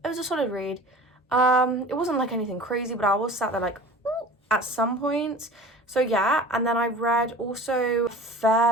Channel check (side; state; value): both; normal; correlation 0.40